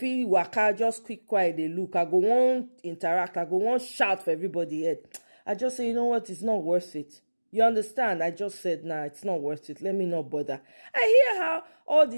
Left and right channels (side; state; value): both; inverted; correlation -1.00